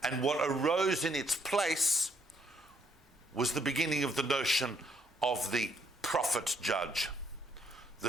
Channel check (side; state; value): both; normal; correlation 0.69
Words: and what arose in its place was the beginning of the notion of the prophet judge, the